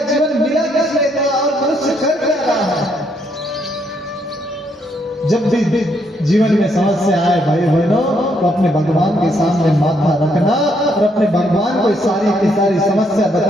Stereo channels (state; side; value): normal; both; correlation 0.73